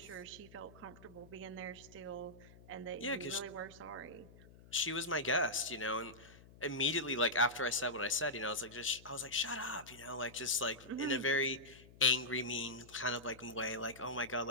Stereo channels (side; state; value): left; noise; hum, 21 dB below the sound